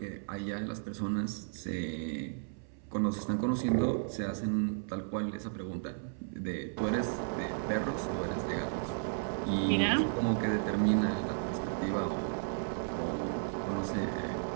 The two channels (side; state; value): left; silent; 55 dB below the other